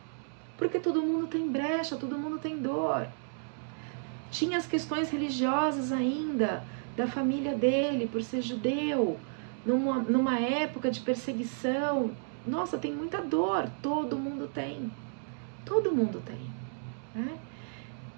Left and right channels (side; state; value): left; silent; digital silence